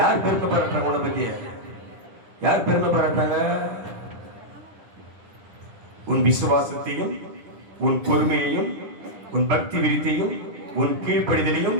பெருமை பாராட்டுறாங்க? உன்னை பத்தி யார் பெருமை பாராட்டுறாங்க? உன் விசுவாசத்தையும், உன் பொறுமையையும், உன் பக்தி விருத்தியையும், உன் கீழ்ப்படிதலையும்,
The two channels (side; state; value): left; late; 10 ms